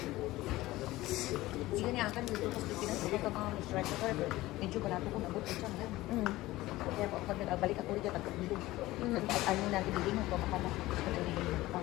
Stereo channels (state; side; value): quieter; right; 17.8 dB